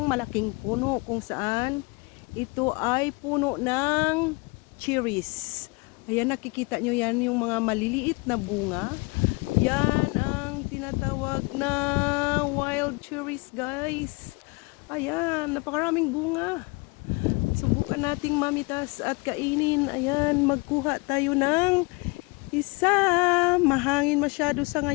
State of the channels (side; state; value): right; quieter; 27.6 dB